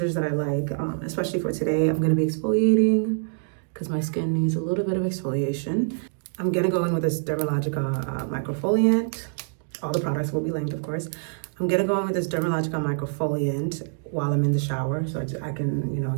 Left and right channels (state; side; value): silent; left; digital silence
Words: that I like, especially for today. I'm gonna be exfoliating because my skin needs a little bit of exfoliation. I'm gonna go in with this Dermalogica Microfoliant. All the products will be linked, of course. I'm gonna go in with this Dermalogica Microfoliant while I'm in the shower, so I can,